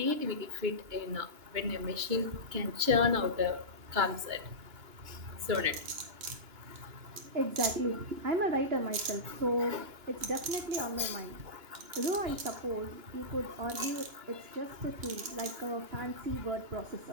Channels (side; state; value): left; late; 2.9 ms